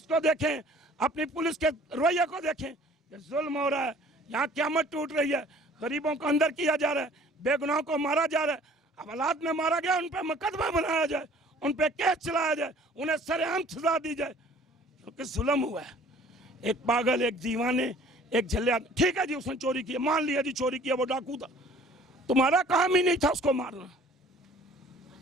को देखें, अपनी पुलिस के रवैये को देखें। ये जुल्म हो रहा है, यहाँ क़यामत टूट रही है, गरीबों को अंदर किया जा रहा है, बेगुनाहों को मारा जा रहा है। अब हालात में मारा गया, उन पर मुकदमा बनाया जाए, उन पर केस चलाया जाए, उन्हें सरेआम सजा दी जाए, क्योंकि जुल्म हुआ है। एक पागल, एक दीवाने, एक झल्ले, ठीक है जी उसने चोरी की, मान लिया जी चोरी किया, वो डाकू था, तुम्हारा काम ही नहीं था उसको मारना।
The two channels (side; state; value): both; normal; correlation 0.52